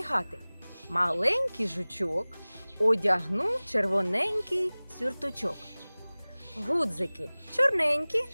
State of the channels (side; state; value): both; inverted; correlation -1.00